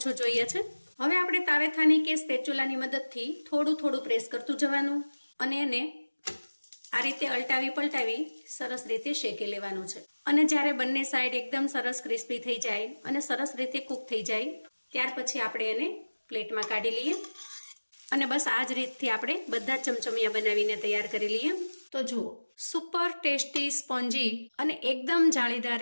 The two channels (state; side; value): inverted; both; correlation -1.00